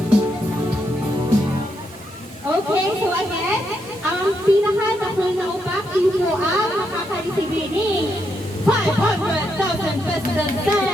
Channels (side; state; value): both; normal; correlation 0.80